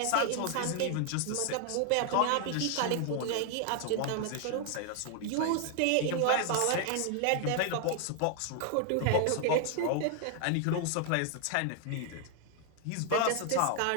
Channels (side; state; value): both; different; correlation 0.00